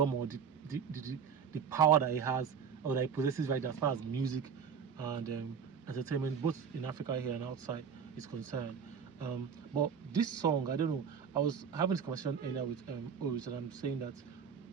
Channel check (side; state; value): left; quieter; 6.9 dB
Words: or the power that he has, or that he possesses right now, as far as music and entertainment, both in Africa here and outside, is concerned. But this song, I don't know, I was having this conversation earlier with Oris, and I'm saying that